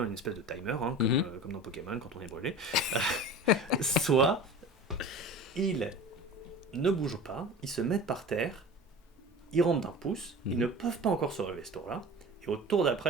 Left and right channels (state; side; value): normal; both; correlation 0.36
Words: une espèce de timer, comme dans Pokémon quand on est brûlé. Soit ils ne bougent pas, ils se mettent par terre, ils rentrent d'un pouce, ils ne peuvent pas encore se relever ce tour-là. Et au tour